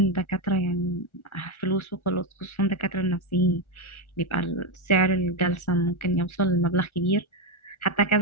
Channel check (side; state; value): right; late; 1.4 ms